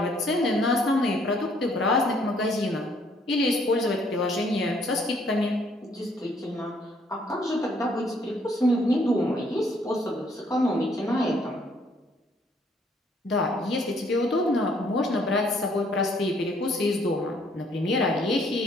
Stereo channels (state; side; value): normal; both; correlation 0.65